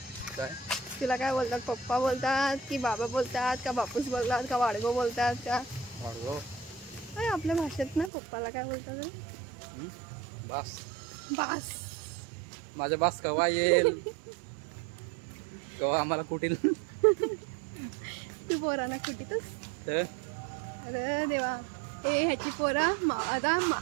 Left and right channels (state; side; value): drops out; left; at 8.1 s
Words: तिला काय बोलतात. पप्पा बोलतात की बाबा बोलतात का बापूस बोलतात का वाडगो बोलतात का अरे आपल्या भाषेत ना पप्पाला काय बोलतात बास. बास माझ्या बास कवा येईल कवा आम्हाला कुठील. तू पोरांना कुठीतच. अरे देवा ए ह्याची पोरा आता